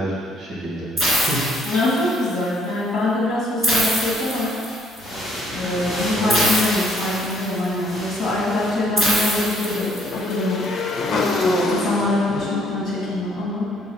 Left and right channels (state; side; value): normal; both; correlation 0.65